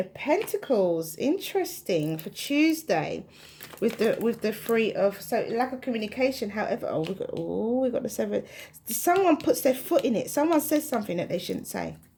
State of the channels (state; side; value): identical; both; correlation 1.00